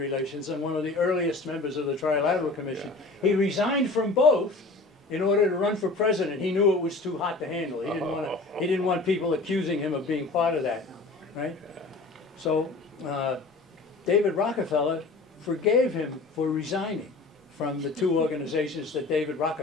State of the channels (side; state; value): right; quieter; 3.4 dB